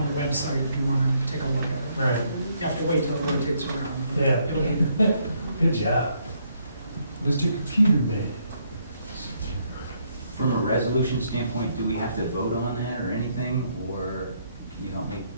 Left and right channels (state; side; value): inverted; both; correlation -0.72